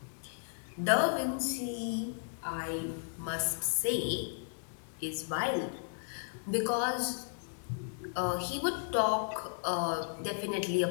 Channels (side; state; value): right; silent; digital silence